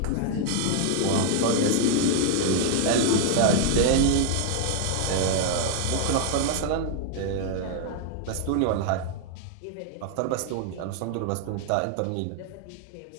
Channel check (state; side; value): different; both; correlation 0.00